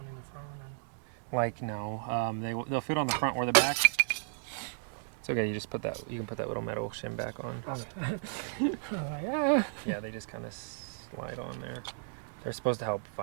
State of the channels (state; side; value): silent; left; digital silence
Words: in the front and... Like no, they'll fit on the front or the back. It's okay. You just put that. You can put that little metal shim back on. Yeah. Yeah, they just kind of slide on there. They're supposed to help